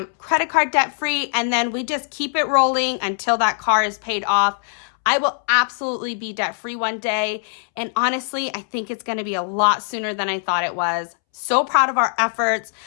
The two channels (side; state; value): right; silent; 65 dB below the other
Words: credit card debt free, and then we just keep it rolling until that car is paid off. I will absolutely be debt free one day. And honestly, I think it's going to be a lot sooner than I thought it was. So proud of our efforts.